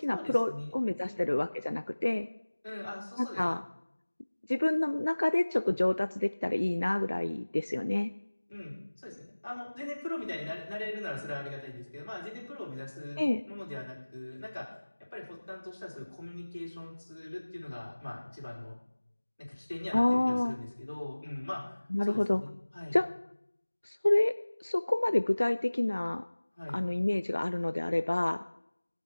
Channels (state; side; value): inverted; both; correlation -1.00